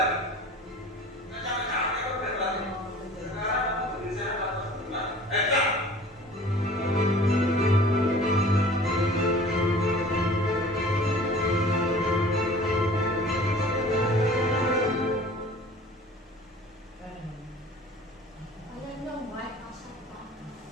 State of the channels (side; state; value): both; normal; correlation 0.46